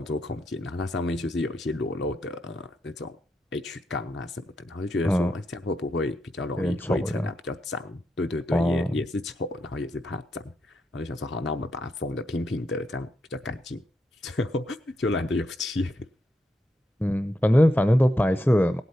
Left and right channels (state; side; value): normal; both; correlation 0.83